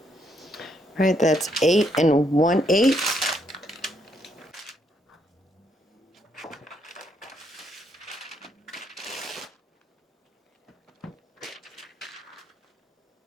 All right, that's 8 1/8.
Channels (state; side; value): normal; both; correlation 0.75